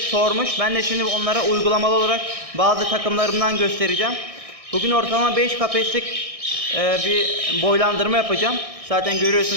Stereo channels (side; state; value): left; late; 1.6 ms